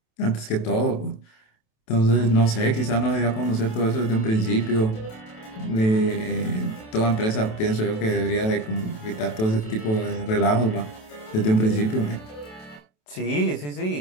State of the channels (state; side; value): late; right; 27 ms